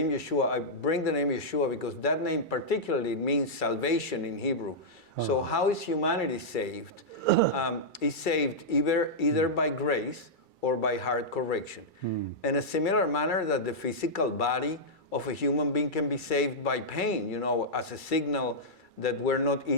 Yeshua, I bring the name Yeshua because that name particularly means salvation in Hebrew. So how is humanity saved? Is saved either by grace or by heart correction. In a similar manner that the physical body of a human being can be saved by pain, as a signal that we're not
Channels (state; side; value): late; right; 2.3 ms